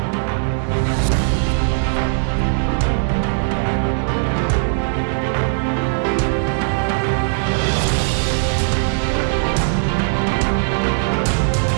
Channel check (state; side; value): silent; left; digital silence